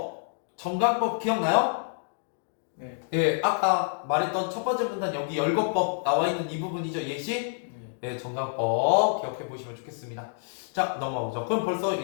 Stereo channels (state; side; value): silent; right; digital silence